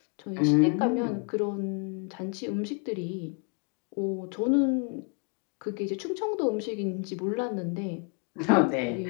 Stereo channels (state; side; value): quieter; right; 35.3 dB